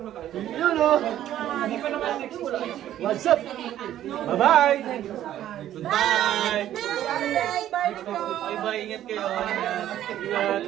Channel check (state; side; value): quieter; left; 12.1 dB